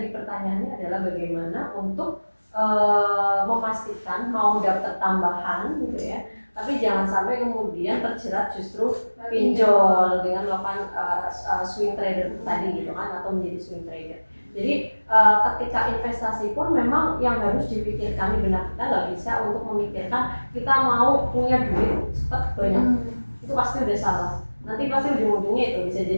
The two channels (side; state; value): both; inverted; correlation -1.00